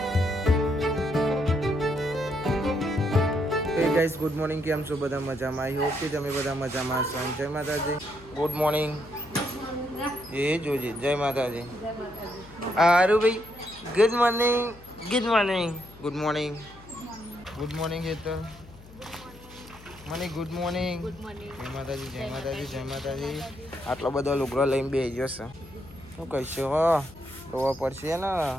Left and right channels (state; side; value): noise; left; hum, 21 dB below the sound